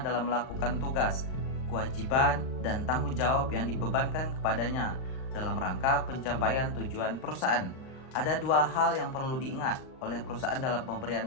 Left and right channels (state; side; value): late; right; 38 ms